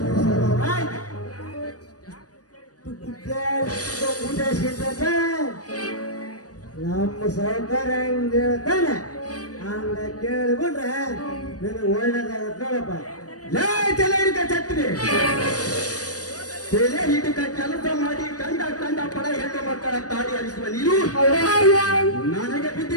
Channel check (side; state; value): right; late; 0.68 ms